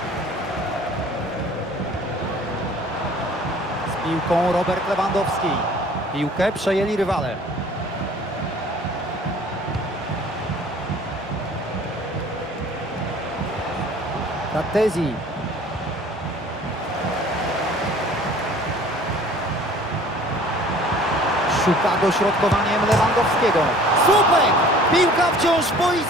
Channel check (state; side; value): normal; both; correlation 0.50